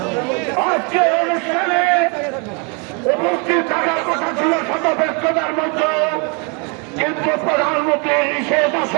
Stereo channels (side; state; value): left; quieter; 34.6 dB